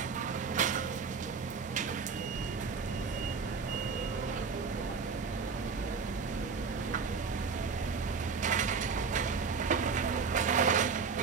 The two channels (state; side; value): quieter; left; 5.4 dB